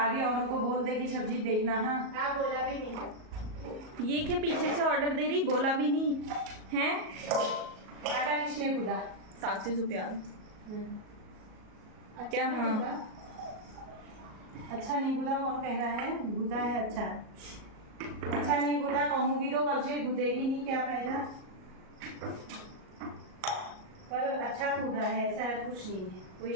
औरों को बोल दे कि सब्जी देखना। हाँ बोला भी नहीं। ये क्या पीछे से ऑर्डर दे रही बोला भी नहीं है। आटा किसने गूदा? साक्षी सुप्याल क्या? हाँ अच्छा नहीं गूदा कौन कह रहा है? गूदा है अच्छा अच्छा नहीं गूदा कहूँगी तो कल से गूदेगी नहीं क्या फायदा। पर अच्छा गूदा है ऐसा कुछ नहीं है कोई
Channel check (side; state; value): left; late; 38 ms